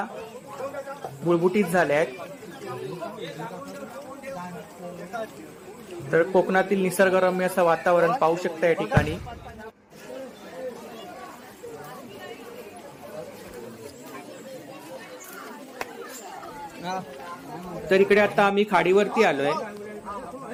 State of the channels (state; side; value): identical; both; correlation 1.00